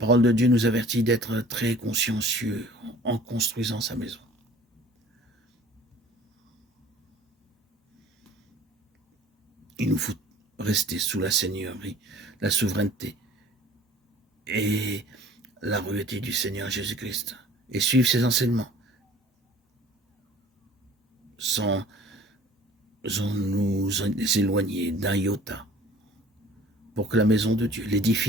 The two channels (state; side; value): normal; both; correlation 0.49